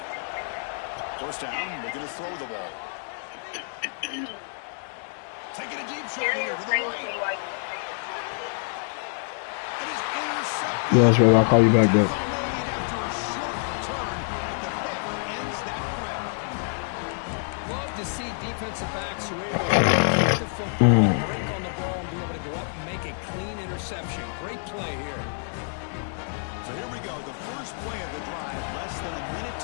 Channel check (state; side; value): silent; right; 60 dB below the other